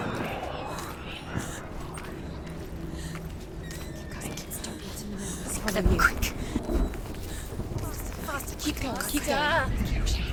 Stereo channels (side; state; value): both; identical; correlation 1.00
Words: Quick. Faster, keep going, keep going.